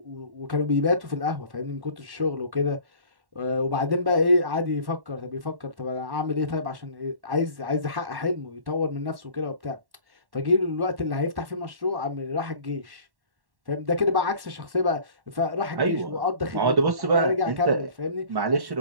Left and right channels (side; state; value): left; late; 1.1 ms